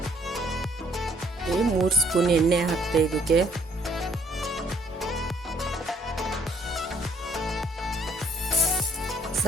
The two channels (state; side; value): normal; both; correlation 0.62